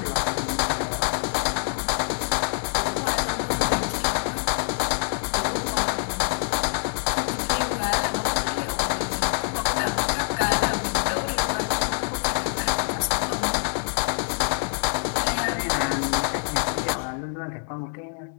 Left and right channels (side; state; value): right; silent; digital silence